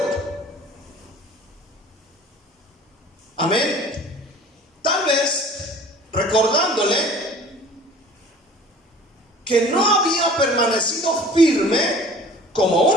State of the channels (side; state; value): both; normal; correlation 0.47